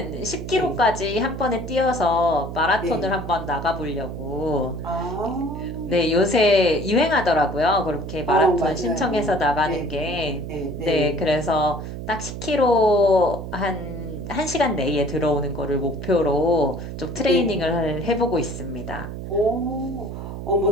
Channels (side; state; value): right; noise; hum, 8 dB below the sound